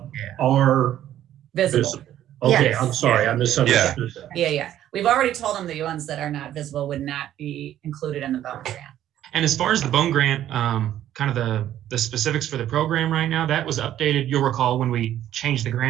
Yeah. are Visible. visible. Okay, Yes. I'm sorry, I misunderstood that. Yeah. We've already told them the ones that are not visible would not be included in the Bone Grant. And as far as the Bone Grant, kind of the specifics for the program right now, that was updated. You'll recall when we changed the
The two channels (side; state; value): left; quieter; 11.9 dB